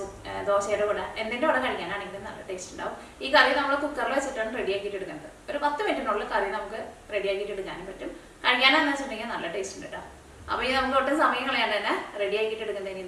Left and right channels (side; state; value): both; identical; correlation 1.00